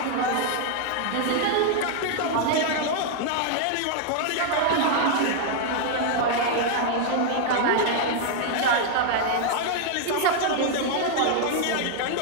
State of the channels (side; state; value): both; different; correlation 0.00